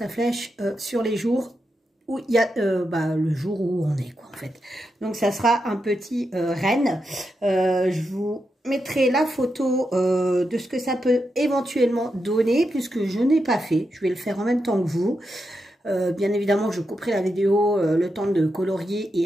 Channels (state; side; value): normal; both; correlation 0.86